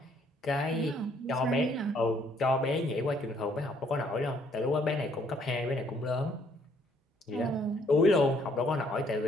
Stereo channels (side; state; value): both; normal; correlation 0.66